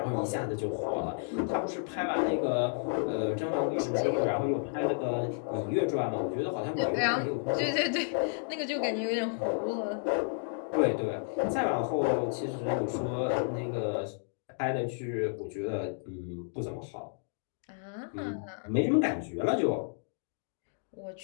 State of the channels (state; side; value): silent; right; digital silence